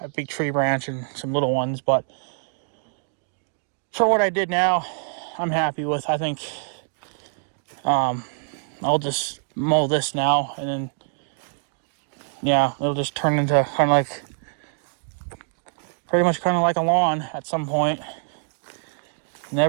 big tree branch and some little ones. But for what I did now, I'm happy with. I think I'll just mow this now, and then, yeah, it'll just turn into pretty much like a lawn at some point.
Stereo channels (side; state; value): left; silent; digital silence